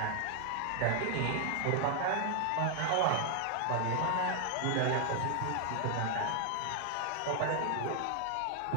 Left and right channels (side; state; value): both; different; correlation 0.00